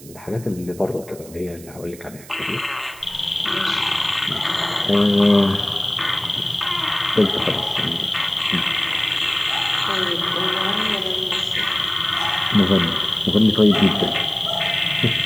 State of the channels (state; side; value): noise; right; hiss, 20 dB below the sound